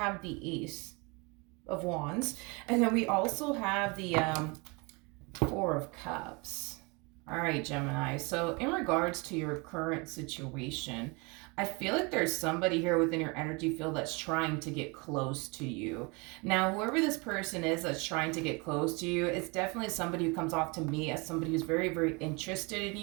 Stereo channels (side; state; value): left; quieter; 29.0 dB